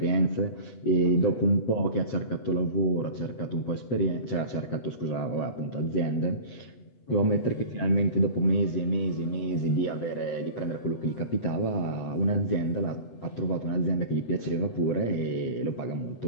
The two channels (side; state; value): right; late; 8.1 ms